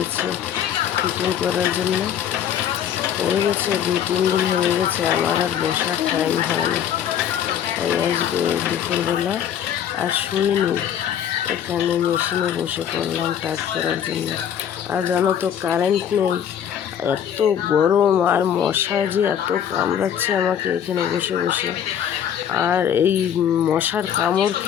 ফিটিং করার জন্য, হয়ে গেছে 2-3 দিন হয়ে গেছে, আমার আর বসার টাইম হয় না। তাই আজকে দুপুরবেলা আর শুইনি, এখানে মেশিনে বসে পড়লাম কাজ করার জন্য। আর জানো তো কারেন্ট নেই, এত গরম আর মশা যে এত কামড়াচ্ছে আমাকে এখানে বসে বসে। আর এই মশার কামড়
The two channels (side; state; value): right; quieter; 9.3 dB